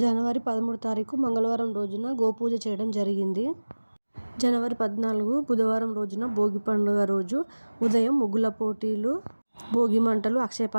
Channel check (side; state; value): both; inverted; correlation -1.00